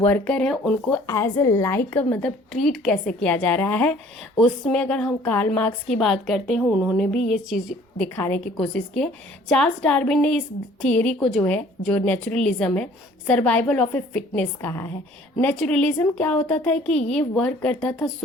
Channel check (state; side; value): normal; both; correlation 0.54